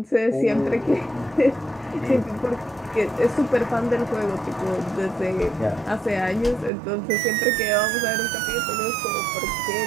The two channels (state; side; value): drops out; left; at 6.7 s